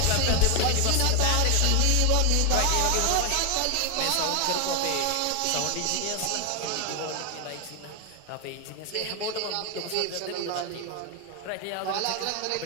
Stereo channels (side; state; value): both; different; correlation 0.01